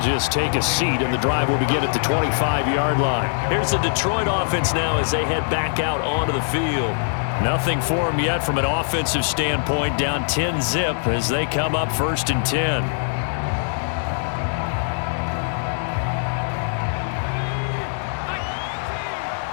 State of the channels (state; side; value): silent; right; digital silence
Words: take a seat, and the drive will begin at the 25-yard line. Here's the Detroit offense now as they head back out onto the field. Nothing for them yet from an offensive standpoint, down 10-zip as they come up 1st and 10.